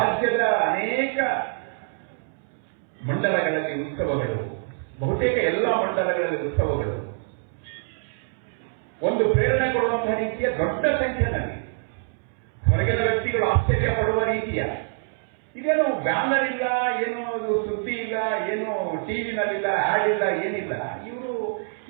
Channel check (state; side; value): silent; left; 62 dB below the other